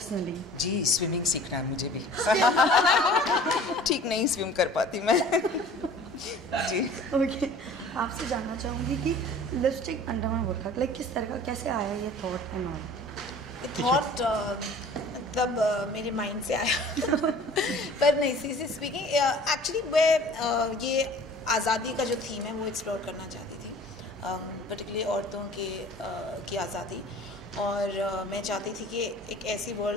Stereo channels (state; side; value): normal; both; correlation 0.46